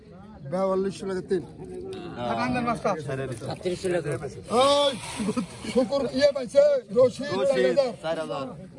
42 টাকা তিন কাকান্দার মাছটা 37 টাকা ওই শুকর ইয়ে পাইছে রশি 4,000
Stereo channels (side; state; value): both; identical; correlation 1.00